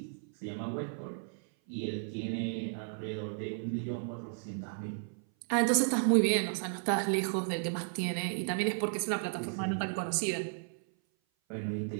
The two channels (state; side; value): silent; left; 55 dB below the other